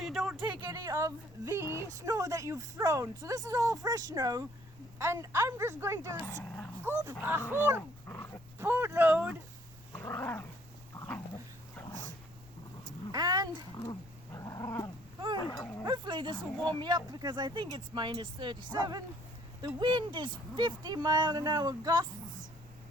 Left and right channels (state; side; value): noise; left; rumble, 22 dB below the sound